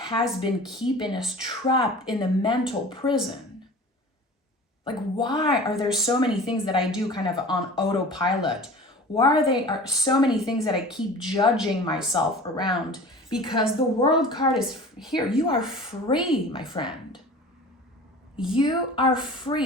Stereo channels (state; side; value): normal; both; correlation 0.40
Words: been keeping us trapped in the mental prison. Like, why are there so many things that I do kind of on autopilot? Why are so many things that I keep judging myself around? Because the World card is here. You are free, my friend. You are